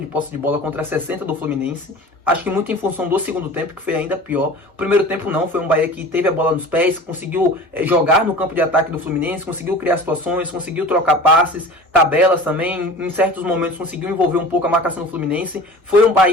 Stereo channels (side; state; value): both; normal; correlation 0.39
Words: de posse de bola contra 60% do Fluminense. Acho que muito em função do segundo tempo, que foi ainda pior. O primeiro tempo não, foi um Bahia que teve a bola nos pés, conseguiu jogar no campo de ataque do Fluminense, conseguiu criar situações, conseguiu trocar passes, tabelas também. Em certos momentos conseguiu envolver um pouco a marcação do Fluminense. Foi um